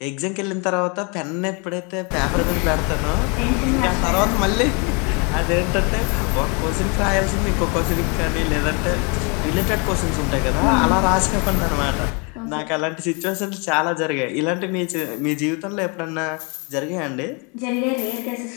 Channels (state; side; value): quieter; right; 33.1 dB